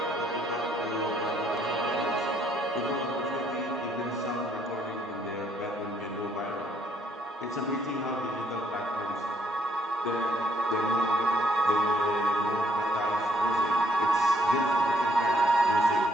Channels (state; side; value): normal; both; correlation 0.68